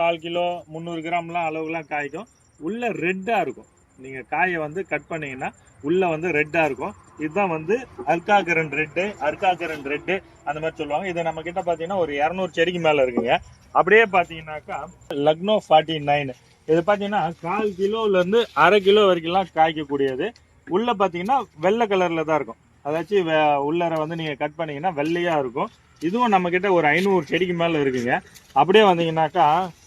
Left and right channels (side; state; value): both; identical; correlation 1.00